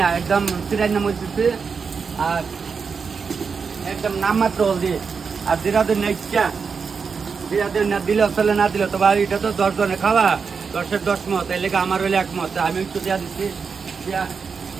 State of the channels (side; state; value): left; quieter; 5.6 dB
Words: না একদম চিরাই না মরতেছে আর একদম নাম মাত্র হলদি আর জিরাদের না ইচ্ছা জিরাদের না দিলেও চলে না দিলেও তো এটা তো 10 জনে খাওয়া 10-এর 10 মত এই লেগে আমার হইলে 1 মত আমি একটু দেওয়া দিচ্ছি